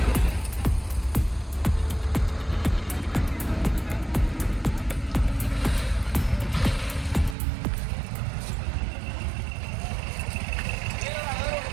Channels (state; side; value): drops out; left; at 7.4 s